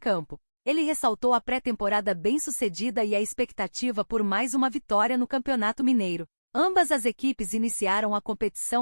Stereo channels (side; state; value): both; inverted; correlation -1.00